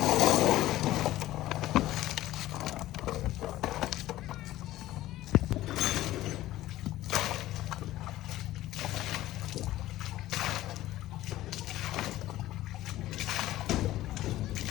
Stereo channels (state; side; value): quieter; right; 15.4 dB